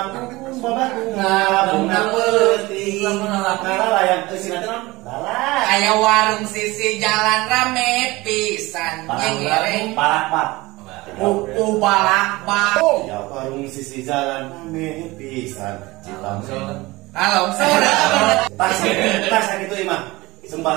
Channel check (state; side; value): quieter; left; 21.0 dB